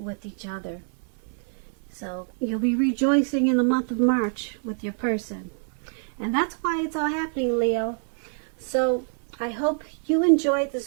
each other. So you'll be rejoicing in the month of March with your person. And that's why it's all happening, Leo. So I hope you enjoyed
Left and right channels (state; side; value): silent; left; 60 dB below the other